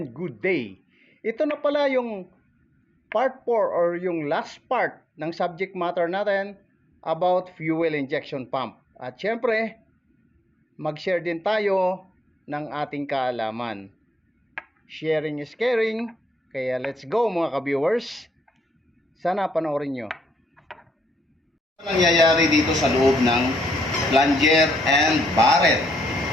good day. Ito na pala yung part 4 or yung last part ng subject matter natin about fuel injection pump. At syempre, mag-share din tayo ng ating kaalaman. Sharing is caring, kaya let's go mga ka-viewers. Sana panoorin nyo. Ano nangyayari dito sa loob ng plunger and barrel?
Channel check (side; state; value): both; normal; correlation 0.76